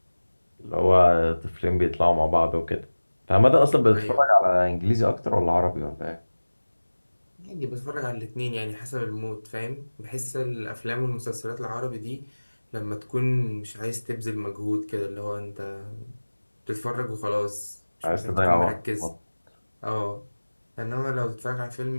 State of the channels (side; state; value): both; inverted; correlation -1.00